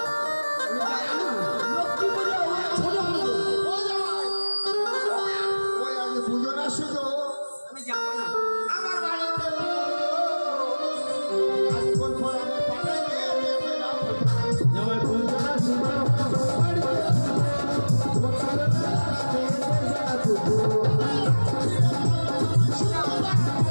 লক্ষ্মী পূজা ছোট পুজো ও জামাই ওই আগে পুজো না শুধু আমি যাবো না আমার বাড়িতে আজকাল পর আমি পাঠাই দিয়ে জামাই পুজো না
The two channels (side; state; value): both; inverted; correlation -1.00